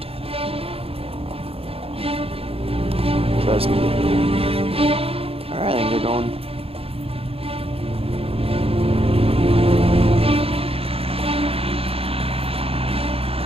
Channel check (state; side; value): late; left; 0.28 ms